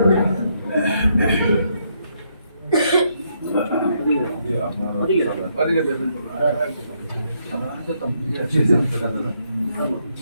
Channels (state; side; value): inverted; both; correlation -0.75